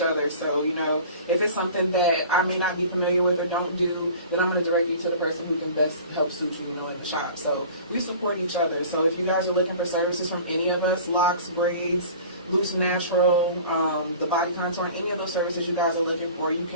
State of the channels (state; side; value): inverted; both; correlation -0.43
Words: other. So, you know, if it's something that I may not be familiar with or don't do, then I'm going to direct you to the person who can best help suit you, you know, in the shop. So we support each other. So if you guys are looking for services from any of us, locks, braids, Loose Natural, the Body Contour, any of those services you guys are looking for, you